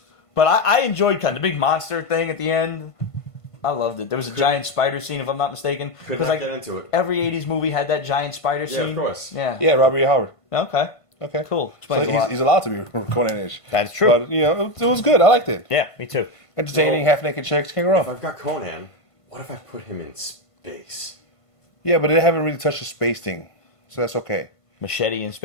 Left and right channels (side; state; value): right; late; 1.5 ms